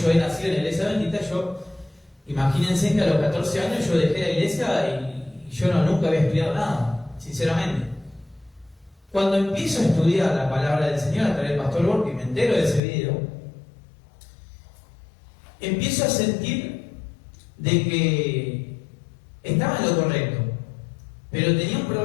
he nacido en la iglesia bendita, imagínense que a los 14 años yo dejé la iglesia y yo nunca había estudiado nada, sinceramente. Cuando empiezo a estudiar la palabra del Señor a través del Pastor Borg, y me entero de ese video, empiezo a sentir de que estaba en lo correcto, pero tenía un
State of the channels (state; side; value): drops out; right; at 12.8 s